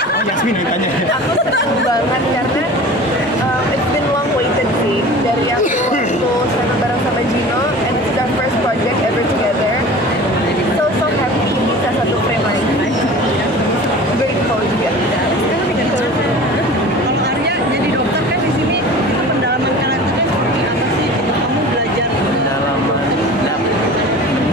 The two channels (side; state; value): both; normal; correlation 0.39